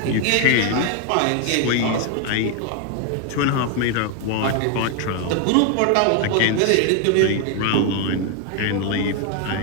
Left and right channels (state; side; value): different; both; correlation 0.01